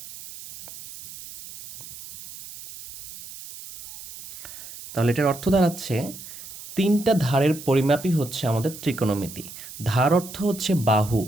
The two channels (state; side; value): noise; right; hiss, 14 dB below the sound